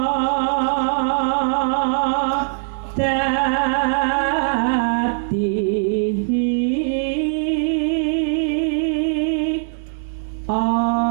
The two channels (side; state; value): left; silent; digital silence